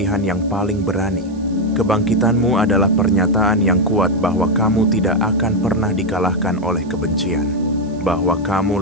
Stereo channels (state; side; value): noise; right; hiss, 28 dB below the sound